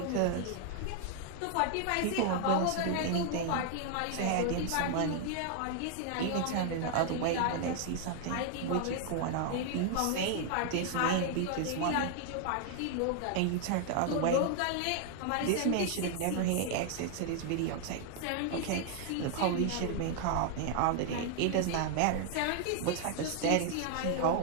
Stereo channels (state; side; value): different; both; correlation 0.00